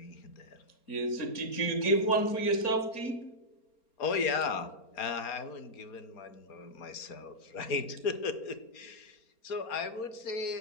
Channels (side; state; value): right; late; 4.3 ms